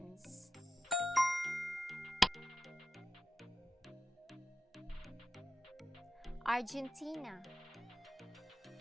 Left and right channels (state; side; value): normal; both; correlation 0.92